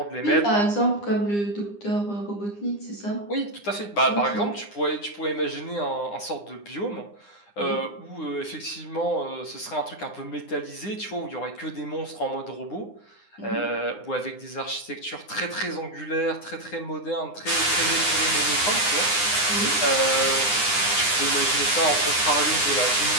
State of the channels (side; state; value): right; late; 9.8 ms